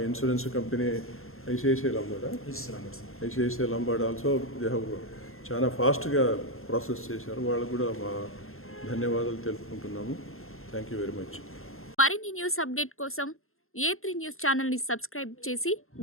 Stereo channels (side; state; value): right; late; 0.61 ms